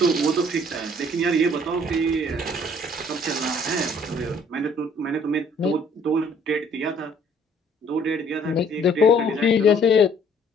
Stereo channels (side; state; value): both; normal; correlation 0.59